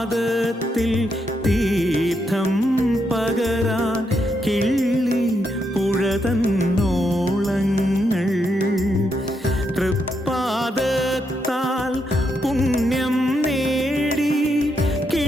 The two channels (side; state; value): both; normal; correlation 0.80